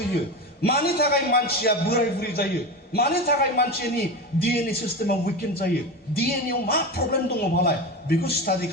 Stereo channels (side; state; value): both; normal; correlation 0.23